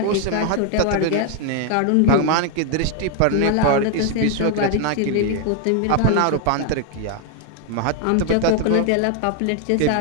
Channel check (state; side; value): different; both; correlation 0.00